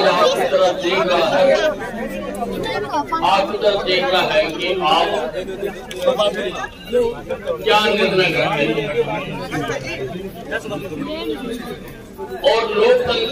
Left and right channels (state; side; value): identical; both; correlation 1.00